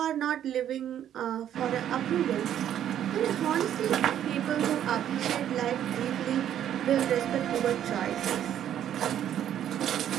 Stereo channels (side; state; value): left; quieter; 10.5 dB